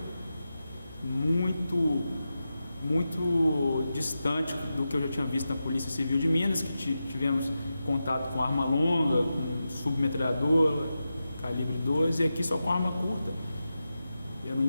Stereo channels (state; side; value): inverted; both; correlation -0.91